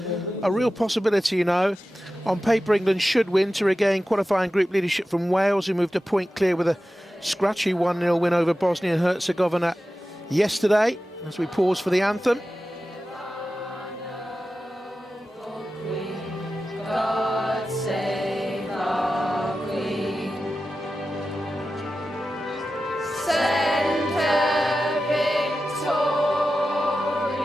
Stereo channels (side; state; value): both; normal; correlation 0.93